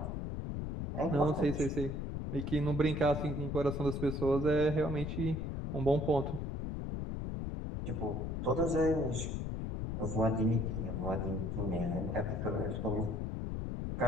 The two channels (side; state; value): left; noise; rumble, 3 dB below the sound